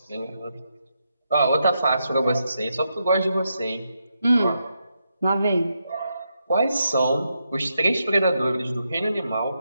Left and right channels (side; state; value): both; inverted; correlation -0.83